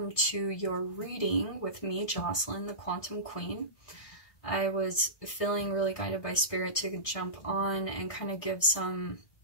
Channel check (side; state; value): right; late; 1.6 ms